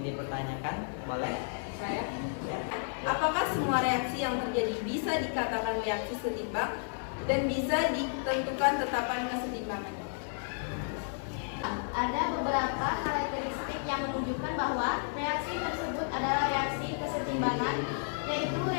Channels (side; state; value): right; silent; 56 dB below the other